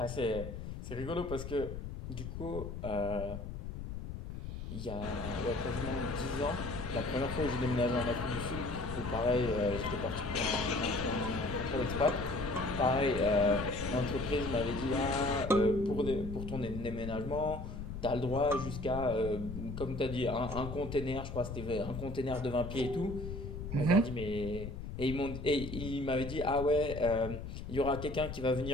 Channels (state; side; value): noise; left; rumble, 8 dB below the sound